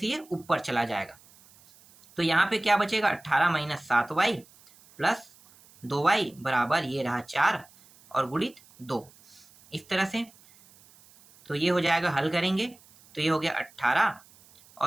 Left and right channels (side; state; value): right; noise; hiss, 27 dB below the sound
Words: ये ऊपर चला जाएगा। तो यहाँ पे क्या बचेगा, 18 - 7y + 2y = ये रहा 4, और गुणित 2, इस तरह से। तो ये हो जाएगा, हल करेंगे तो ये हो गया 18,